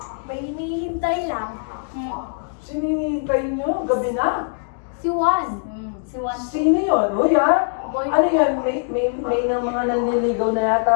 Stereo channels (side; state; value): right; silent; digital silence